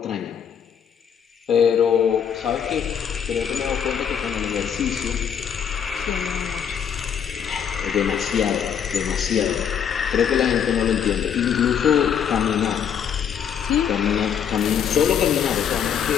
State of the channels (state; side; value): quieter; right; 8.1 dB